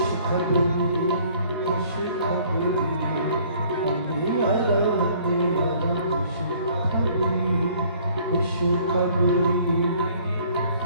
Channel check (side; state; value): both; inverted; correlation -0.57